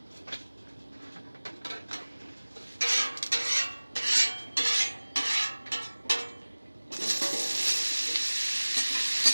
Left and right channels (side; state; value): both; inverted; correlation -1.00